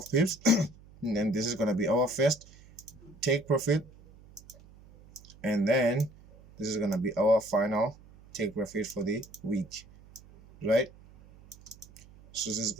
pips. And then this is gonna be our first take profit, and then this is gonna be our final take profit for the week, right? So this is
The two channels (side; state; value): right; noise; hum, 23 dB below the sound